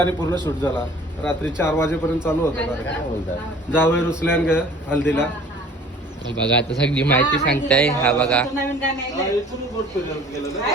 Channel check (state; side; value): normal; both; correlation 0.49